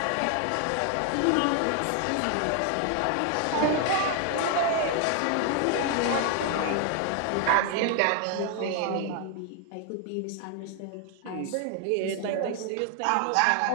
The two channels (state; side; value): different; both; correlation 0.00